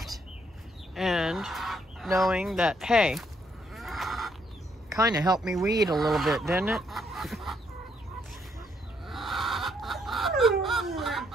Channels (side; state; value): both; normal; correlation 0.72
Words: and knowing that, hey, kind of helped me weed a little bit, didn't it?